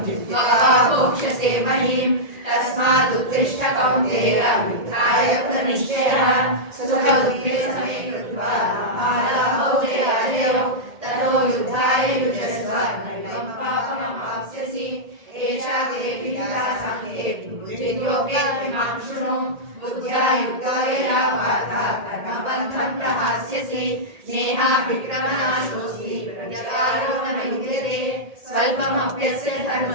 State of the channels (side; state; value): left; late; 1.8 ms